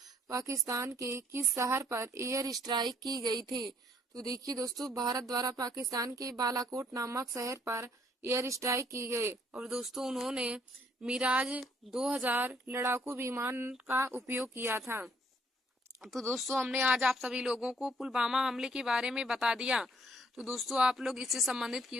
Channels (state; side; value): normal; both; correlation 0.65